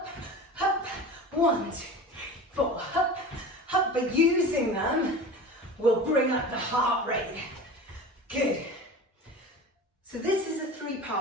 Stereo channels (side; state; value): both; normal; correlation 0.34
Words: up, 1, 2, 4, up, up. But using them will bring up the heart rate. Good. So this is a